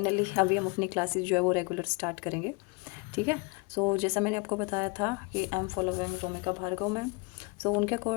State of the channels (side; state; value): right; quieter; 29.5 dB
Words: अभी हम अपनी क्लासेस जो है वो रेगुलर स्टार्ट करेंगे। ठीक है। सो जैसा मैंने आपको बताया था कि I am following Romika Bhargav ma'am. So उनके